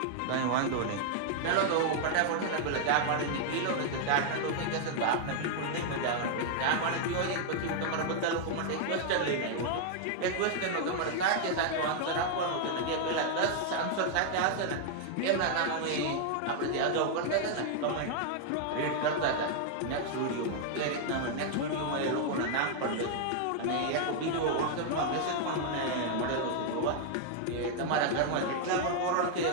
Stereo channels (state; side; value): different; both; correlation 0.00